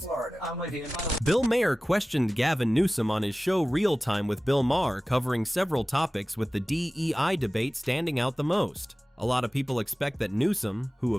I'm with you. Bill Maher questioned Gavin Newsom on his show Real Time with Bill Maher, covering several topics, with the DEI debate standing out the most. A lot of people expect that Newsom, who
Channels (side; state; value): both; normal; correlation 0.97